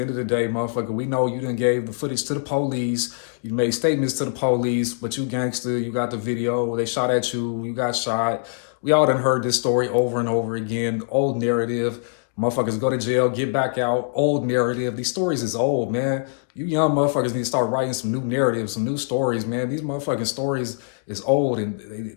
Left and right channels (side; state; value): right; silent; digital silence